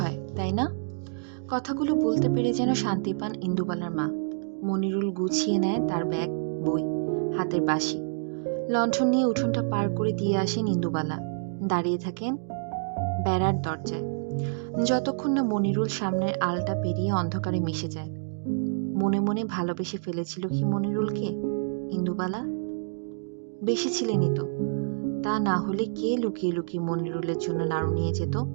তাই না? কথাগুলো বলতে পেরে যেন শান্তি পান ইন্দুবালার মা। মনিরুল গুছিয়ে নেয় তার ব্যাগ, বই, হাতের বাঁশি। লণ্ঠন নিয়ে উঠোনটা পার করে দিয়ে আসেন ইন্দুবালা। দাঁড়িয়ে থাকেন বেড়ার দরজায়, যতক্ষণ না মনিরুল সামনের আলটা পেরিয়ে অন্ধকারে মিশে যায়। মনে মনে ভালোবেসে ফেলেছিল কি মনিরুলকে ইন্দুবালা? বেসেছিলেনই তো, তা না হলে কে লুকিয়ে লুকিয়ে মনিরুলের জন্য নাড়ু নিয়ে যেত?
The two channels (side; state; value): left; silent; digital silence